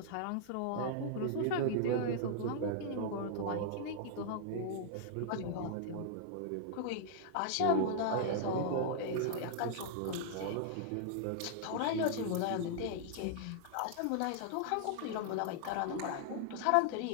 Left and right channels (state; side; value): different; both; correlation -0.01